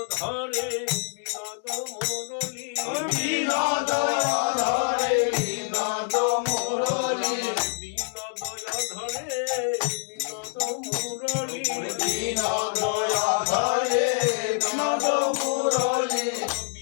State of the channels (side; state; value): right; silent; 61 dB below the other